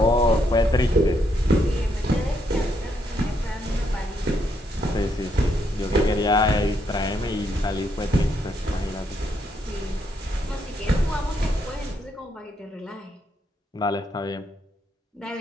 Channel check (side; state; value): both; normal; correlation 0.76